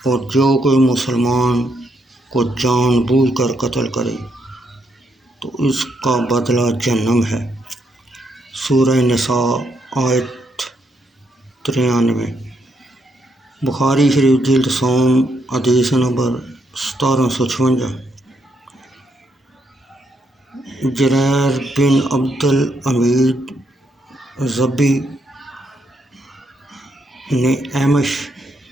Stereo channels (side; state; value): both; normal; correlation 0.77